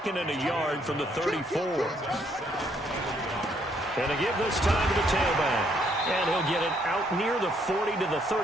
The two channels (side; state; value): both; normal; correlation 0.69